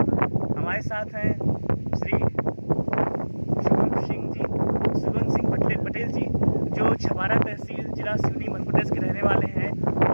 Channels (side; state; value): both; inverted; correlation -1.00